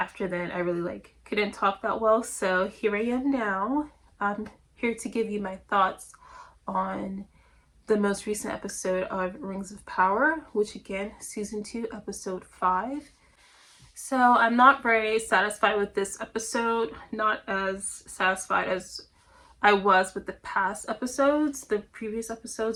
then I really couldn't talk that well, so here I am now. I'm here to give you my thoughts on the most recent episode of Rings of Power, which again, season 2 episode 5. So I'm not very satisfied with this episode, not as satisfied as I was with the past episodes. The previous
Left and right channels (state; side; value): identical; both; correlation 1.00